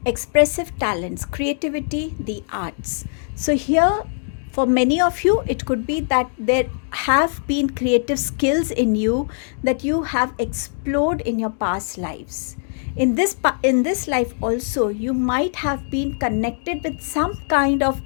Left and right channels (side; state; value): right; silent; digital silence